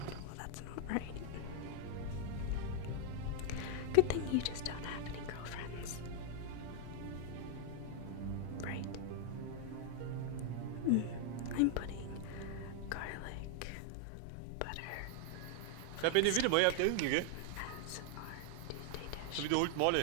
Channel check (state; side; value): different; both; correlation 0.00